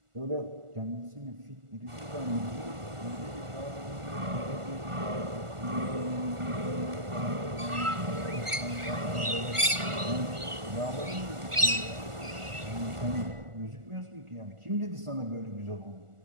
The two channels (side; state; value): left; late; 1.4 ms